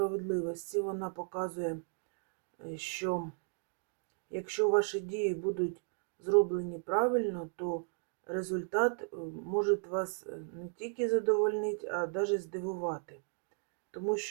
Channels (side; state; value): left; silent; 54 dB below the other